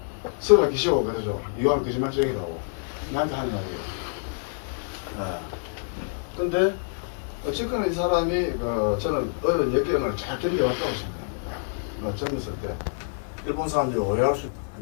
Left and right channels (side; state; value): right; silent; digital silence